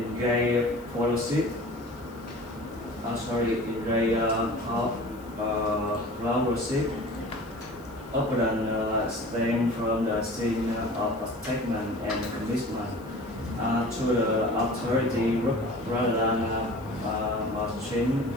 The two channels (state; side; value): noise; left; hiss, 27 dB below the sound